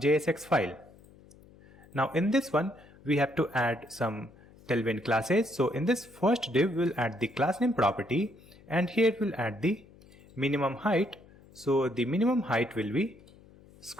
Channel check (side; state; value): left; noise; hum, 24 dB below the sound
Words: file. Now in this one, we have to add some tailwind classes. So in this first div, we'll add the class name property, and here we'll add the minimum height. So the minimum height will be